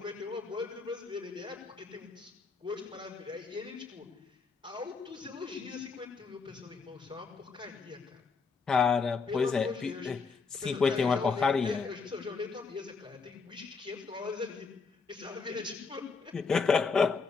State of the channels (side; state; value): right; quieter; 4.9 dB